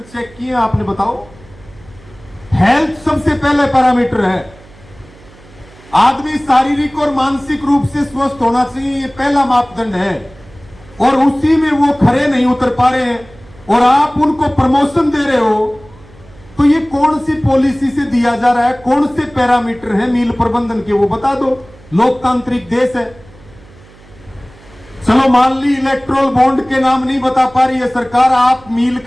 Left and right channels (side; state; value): right; noise; hum, 24 dB below the sound